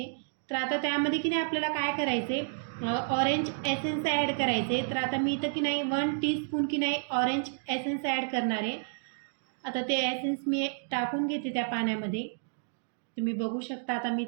तर आता त्यामध्ये की नाही आपल्याला काय करायचे, ऑरेंज एसेन्स ॲड करायचे. तर आता मी इथं की नाही 1 टीस्पून की नाही ऑरेंज एसेन्स ॲड करणार आहे. आता ते एसेन्स मी टाकून घेते त्या पाण्यामध्ये. तुम्ही बघू शकता आता मी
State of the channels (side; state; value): left; silent; digital silence